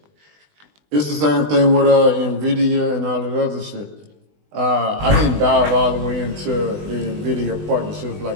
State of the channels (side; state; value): left; late; 20 ms